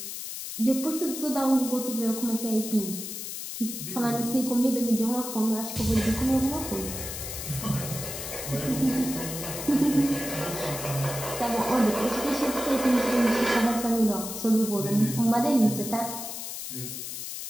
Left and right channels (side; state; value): left; noise; hiss, 7 dB below the sound